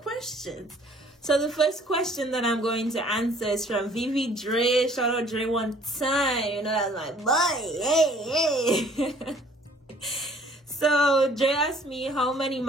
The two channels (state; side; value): normal; both; correlation 0.57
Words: So the first question that I'm going to answer is from Vivi Dre. Shout out Dre one time. You know, that's my boy. Hey. So Dre asked me how many